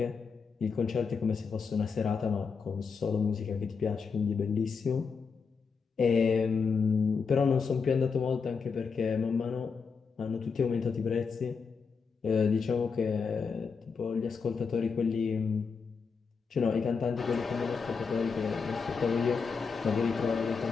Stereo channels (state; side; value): quieter; right; 5.4 dB